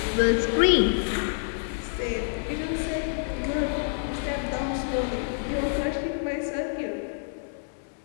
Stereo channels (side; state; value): right; silent; digital silence